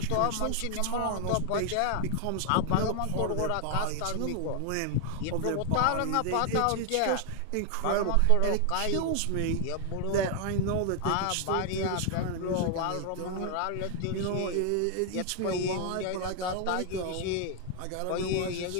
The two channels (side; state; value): both; different; correlation 0.00